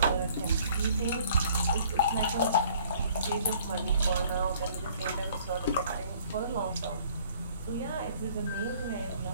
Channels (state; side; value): inverted; both; correlation -0.57